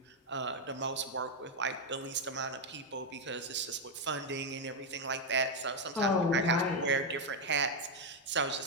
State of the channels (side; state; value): both; normal; correlation 0.02